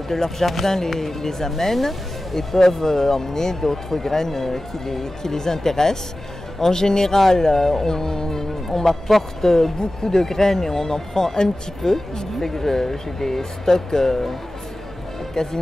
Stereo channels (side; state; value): both; normal; correlation 0.96